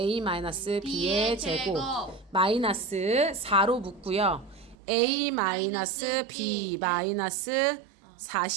제곱 마이너스 4로 묶고요. a-b 마이너스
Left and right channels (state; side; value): drops out; left; at 4.8 s